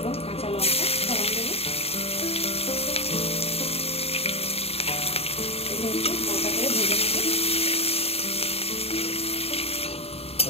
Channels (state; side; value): late; right; 0.29 ms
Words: কাঁচা লঙ্কা ফোড়ন দেব। হালকা করে ভেজে নেব।